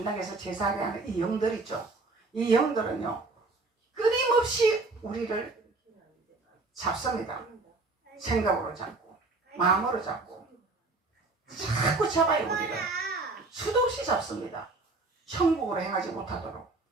제사하게 하는 이 영들 있죠. 이 영들은요, 끊임없이 우리를 잡습니다. 생각으로 잡고 마음으로 잡고 자꾸 잡아요. 우리를 수도 없이 잡습니다. 천국으로 행하지 못하도록.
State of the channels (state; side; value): quieter; left; 3.5 dB